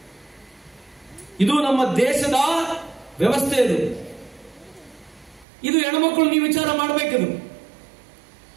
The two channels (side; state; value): left; drops out; at 5.5 s